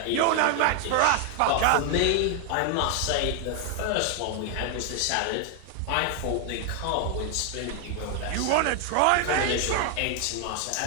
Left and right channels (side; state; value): both; different; correlation 0.00